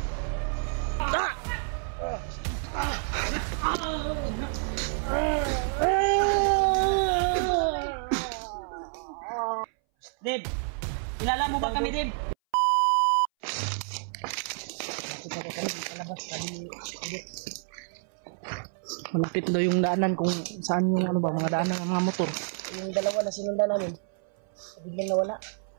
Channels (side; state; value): left; silent; 59 dB below the other